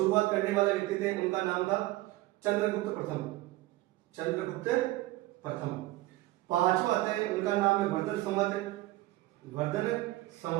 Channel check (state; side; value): quieter; left; 18.0 dB